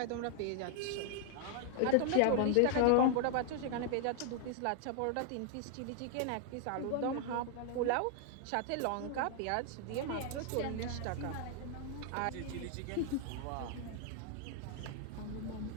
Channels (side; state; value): both; different; correlation 0.00